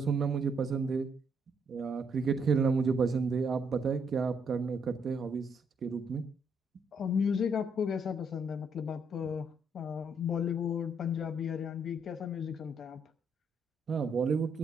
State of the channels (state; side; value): normal; both; correlation 0.72